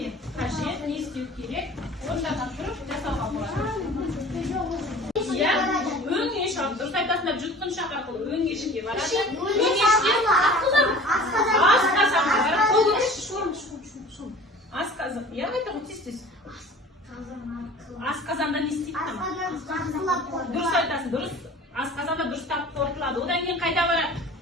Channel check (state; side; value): normal; both; correlation 0.44